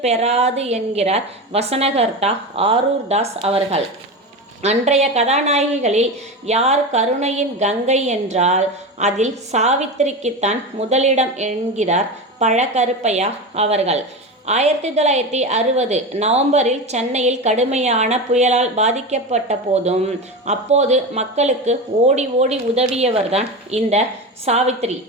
பெறாது என்கிறார் வசனகர்த்தா ஆரூர் தாஸ் அவர்கள். அன்றைய கதாநாயகிகளில் யார் கருணையின் கங்கை என்றால் அதில் சாவித்திரிக்குத்தான் முதலிடம் என்கிறார் பழகருப்பையா அவர்கள். 1960 நவம்பரில் சென்னையில் கடுமையான புயலால் பாதிக்கப்பட்ட போதும் அப்போது மக்களுக்கு ஓடி ஓடி உதவியவர்தான் இந்த சாவித்திரி.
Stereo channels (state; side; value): normal; both; correlation 0.22